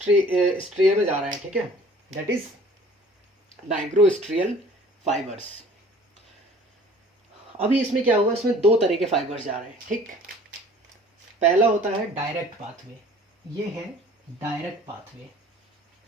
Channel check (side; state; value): both; normal; correlation 0.51